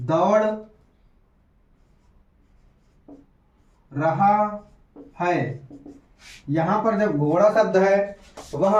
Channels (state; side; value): identical; both; correlation 1.00